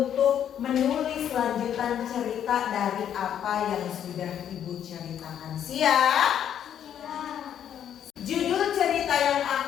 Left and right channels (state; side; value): quieter; right; 9.6 dB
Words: menulis lanjutan cerita dari apa yang sudah Ibu ceritakan. Siap? Judul cerita yang